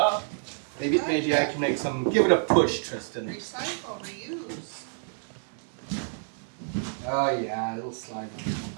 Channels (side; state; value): left; silent; digital silence